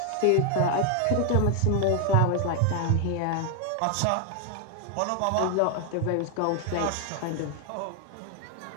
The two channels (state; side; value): different; both; correlation 0.00